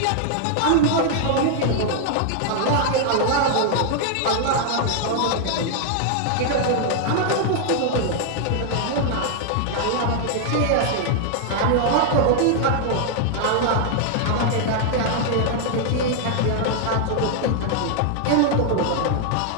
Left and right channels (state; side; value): different; both; correlation 0.00